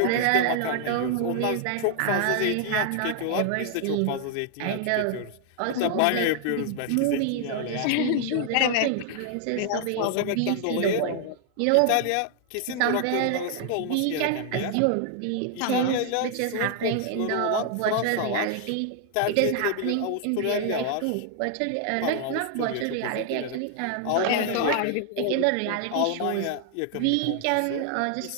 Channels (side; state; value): both; different; correlation 0.00